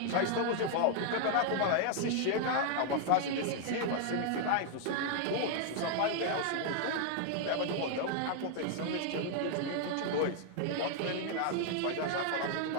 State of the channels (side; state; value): both; different; correlation 0.00